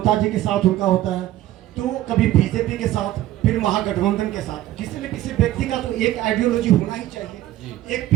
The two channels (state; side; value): quieter; left; 14.4 dB